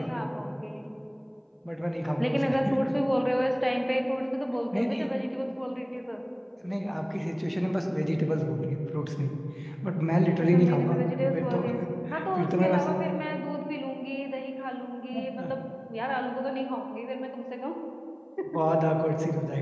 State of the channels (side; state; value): both; identical; correlation 1.00